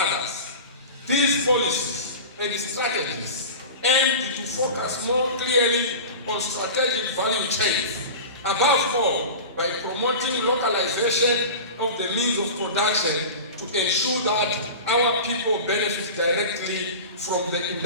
These policies and strategies aim to focus more clearly on strategic value chains, above all by promoting localization of the means of production to ensure that our people benefit directly from the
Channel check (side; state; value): both; inverted; correlation -0.32